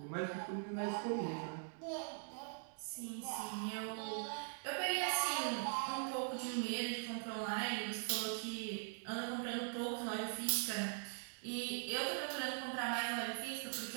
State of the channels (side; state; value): left; silent; digital silence